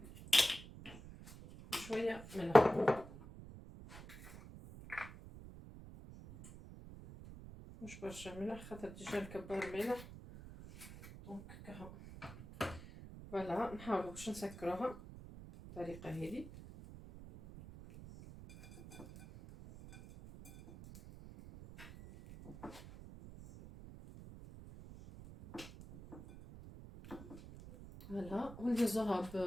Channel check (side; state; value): right; noise; rumble, 14 dB below the sound